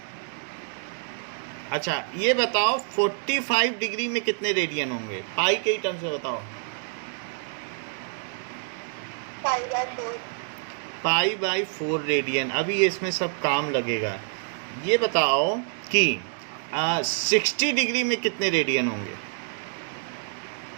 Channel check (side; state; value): left; silent; 60 dB below the other